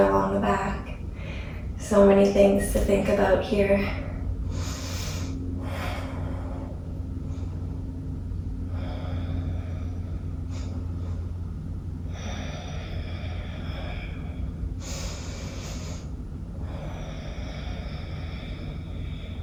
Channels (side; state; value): both; identical; correlation 1.00